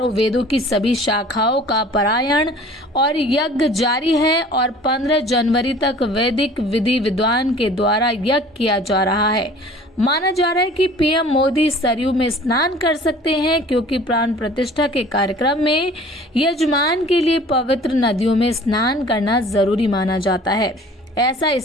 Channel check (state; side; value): normal; both; correlation 0.48